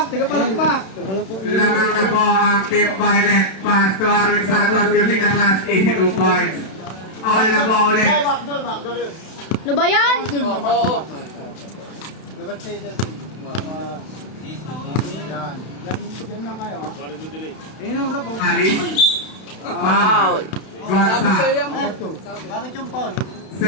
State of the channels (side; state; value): right; late; 32 ms